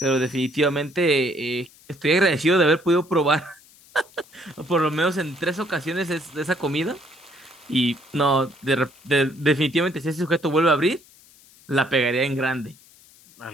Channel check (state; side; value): noise; left; hiss, 26 dB below the sound